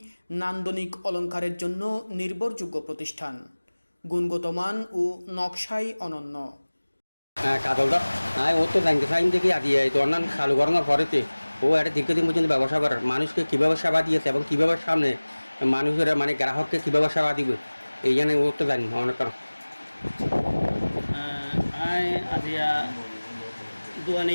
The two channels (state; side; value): inverted; both; correlation -1.00